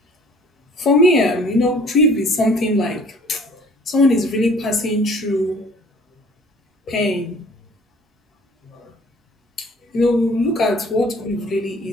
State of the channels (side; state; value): both; normal; correlation 0.53